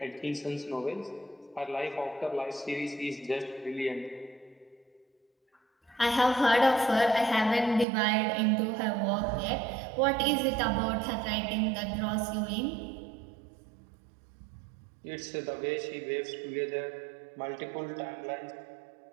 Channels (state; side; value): drops out; left; at 7.9 s